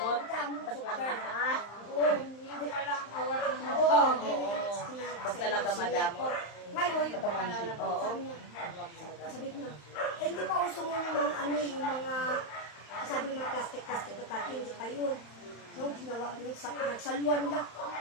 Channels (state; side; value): late; right; 35 ms